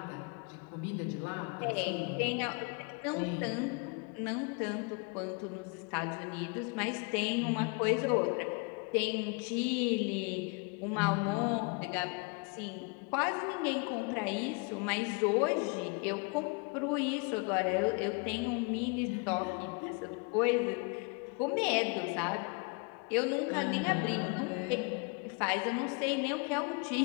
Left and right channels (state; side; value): quieter; right; 33.0 dB